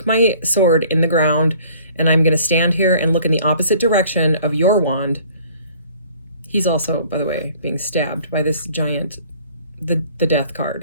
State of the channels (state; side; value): inverted; both; correlation -0.53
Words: my sword in the ground and I'm going to stand here and look in the opposite direction of your wand. He's also, by the way, being stabbed by this giant, the death